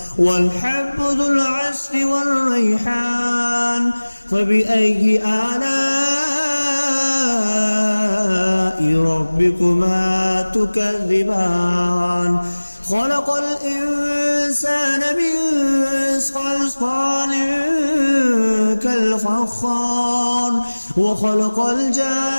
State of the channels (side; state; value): both; inverted; correlation -1.00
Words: والحب ذو العصف والريحان. فبأي آلاء ربكما تكذبان؟ خلق الإنسان من صلصال كالفخار وخلق